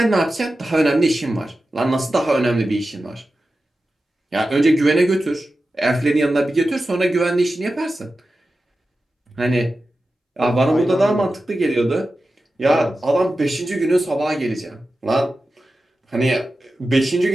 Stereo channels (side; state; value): both; normal; correlation 0.93